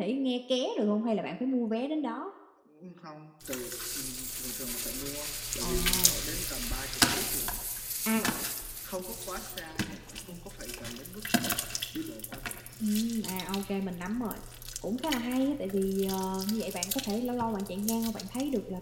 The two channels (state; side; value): identical; both; correlation 1.00